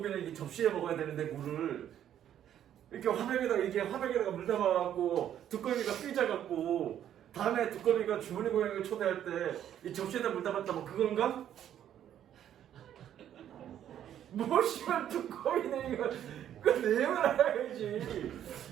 이 접시에 먹어야 되는데 물을 이렇게 화병에다가 물 담아갖고 두꺼비가 삐져갖고 다음에 두꺼비가 주머니 고양이를 초대할 때 이 접시에다 물 담았다 뭐 그건가? 뭐 씨발 두꺼비네 이거 그 내용을 알아야지.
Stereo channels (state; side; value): quieter; left; 10.5 dB